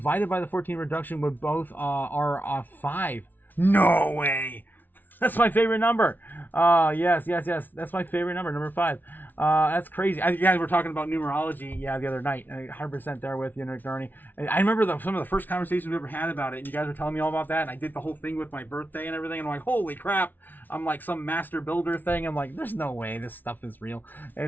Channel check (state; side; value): late; right; 0.086 ms